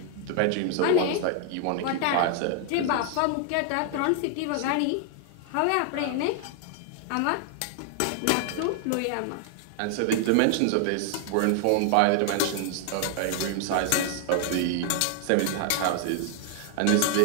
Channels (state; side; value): different; both; correlation 0.00